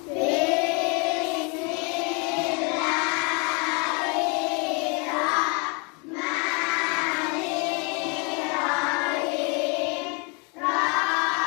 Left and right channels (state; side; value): quieter; right; 33.2 dB